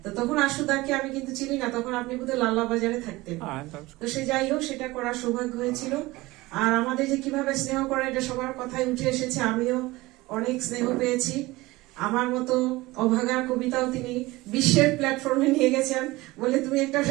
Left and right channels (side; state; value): left; quieter; 20.2 dB